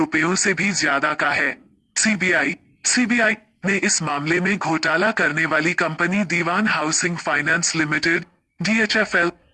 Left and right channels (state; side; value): identical; both; correlation 1.00